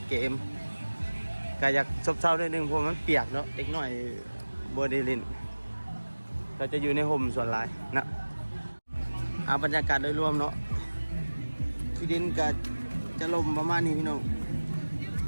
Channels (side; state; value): both; inverted; correlation -1.00